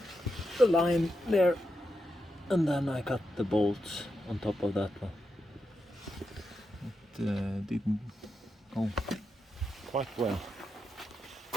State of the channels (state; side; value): normal; both; correlation 0.86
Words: line there, and then I cut the bolts on top of that one. It didn't go quite well.